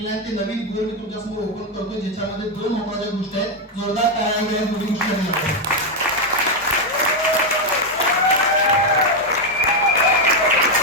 आहे. ते नवीन गोल मी तुमच्या समोर ओपन करतो ज्याच्यामध्ये 2 महत्त्वाच्या गोष्टी आहेत. जोरदार टाळ्या घ्या दोन्ही गोष्टी आहेत.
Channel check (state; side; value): normal; both; correlation 0.04